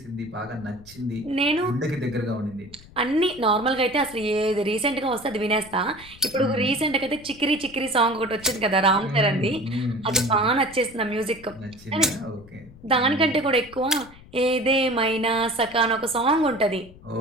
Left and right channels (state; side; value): noise; left; rumble, 21 dB below the sound